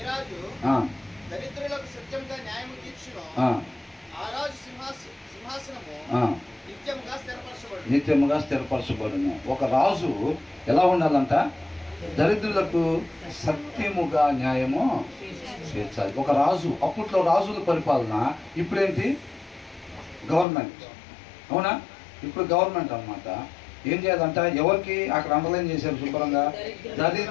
రాజు దరిద్రులకు సత్యంగా న్యాయము తీర్చును, ఆ రాజు సింహాసనము నిత్యముగా స్థిరపరచబడును. ఒక రాజు ఎలా ఉండాలంట? దరిద్రులకు సత్యముగా న్యాయము చేర్చాలి. ఒక రాజు, అప్పట్లో రాజుల పరిపాలన, ఇప్పుడేంటి? గవర్నమెంట్. అవునా? ఇప్పుడు గవర్నమెంట్ అన్నమాట. ఏం చేయాలంట? ఎవరికి అక్కడ అండర్లైన్ చేశారు శుభ్రంగా,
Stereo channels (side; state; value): right; drops out; at 20.5 s